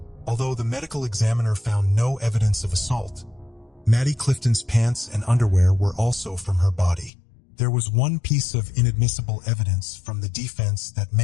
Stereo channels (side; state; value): right; drops out; at 7.1 s